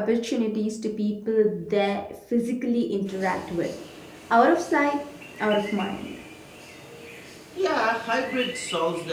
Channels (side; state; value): both; identical; correlation 1.00